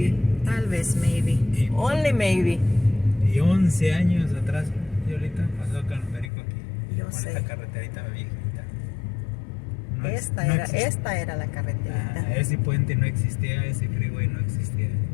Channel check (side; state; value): right; drops out; at 6.3 s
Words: Tal vez, maybe. Only maybe. Y 11 años atrás, y ahorita pasó con el perico aquí. Yo Con sé. esta carreterita viejita. Esta era la carreterita. Ese puente no existía, ese freeway no existía.